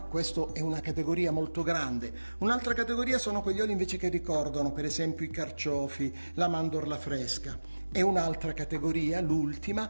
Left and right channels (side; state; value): both; inverted; correlation -1.00